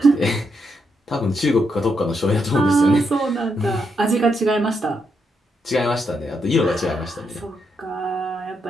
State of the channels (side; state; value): both; normal; correlation 0.80